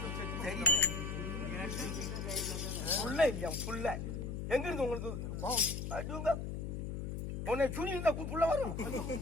புள்ள இல்லையா? புள்ள எங்க இருந்து உங்களுக்கு அதுங்க உன்னை சுனி இருந்தா புள்ள வரும்.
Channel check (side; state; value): left; noise; hum, 4 dB below the sound